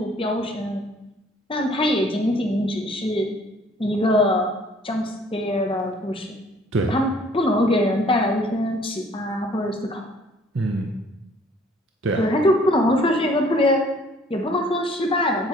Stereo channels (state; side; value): normal; both; correlation 0.57